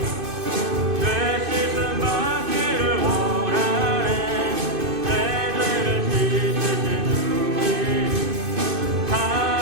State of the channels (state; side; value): late; left; 2.5 ms